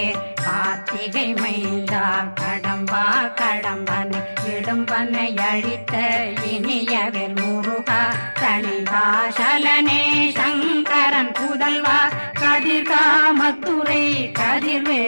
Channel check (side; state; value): both; inverted; correlation -1.00